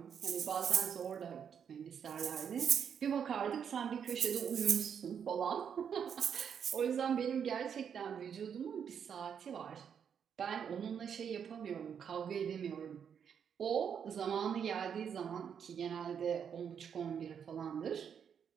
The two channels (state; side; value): quieter; left; 7.7 dB